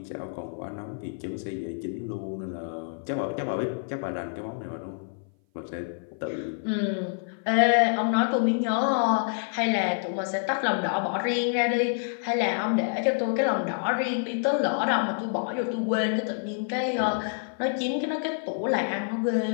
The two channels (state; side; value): silent; right; 56 dB below the other